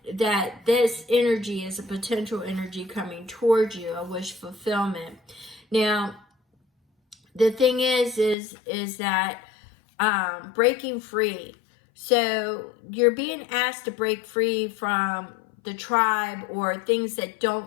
this energy is a potential energy coming towards you, a wish fulfillment. Now, the thing is that breaking free. So you're being asked to break free from the tribe or things that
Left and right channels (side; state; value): right; drops out; at 8.3 s